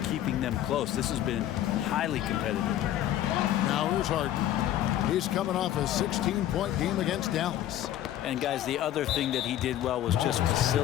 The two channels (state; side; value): quieter; right; 12.4 dB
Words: keeping them close. This has been highly competitive. Now here's Harden. He's coming off a 16-point game against Dallas. And guys, the other thing that he did well was just